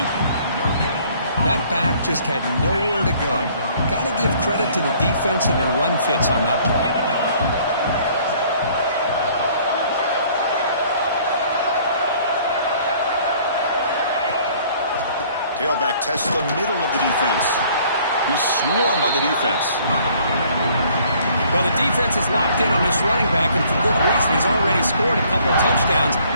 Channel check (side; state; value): both; inverted; correlation -0.58